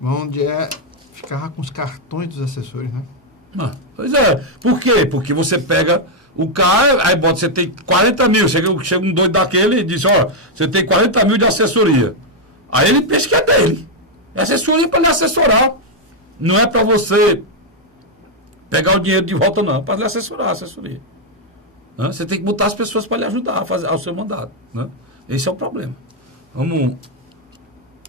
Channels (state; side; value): normal; both; correlation -0.01